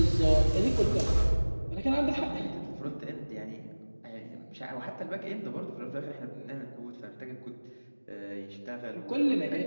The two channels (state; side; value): inverted; both; correlation -1.00